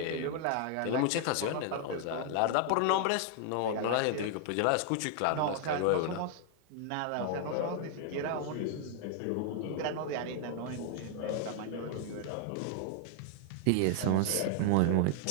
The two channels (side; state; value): both; different; correlation 0.00